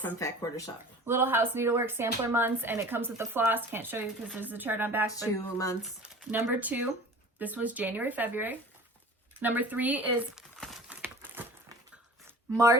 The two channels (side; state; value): both; normal; correlation 0.42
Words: Fat Quarter Shop. Little House Needleworks sampler months, and it comes with the floss. Can't show you because there's a chart on back. 2 months. Number 2, this was January, February. Number 3 is